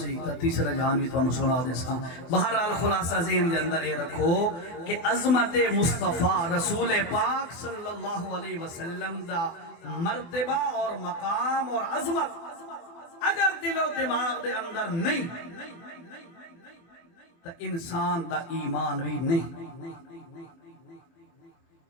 تا تیسرا جہان بھی تو سنا دے ساں۔ بہرحال خلاصہ ذہن دے اندر یہ رکھو کہ عظمت مصطفیٰ رسول پاک صلی اللہ علیہ وسلم دا مرتبہ اور مقام اور عظمت اگر دل و دماغ دے اندر نہیں تو انسان دا ایمان بھی نہیں۔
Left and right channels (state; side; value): late; right; 24 ms